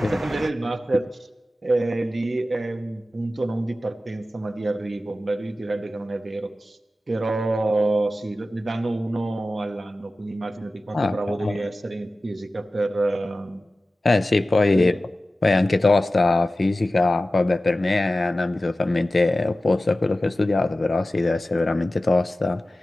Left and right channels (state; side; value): normal; both; correlation 0.95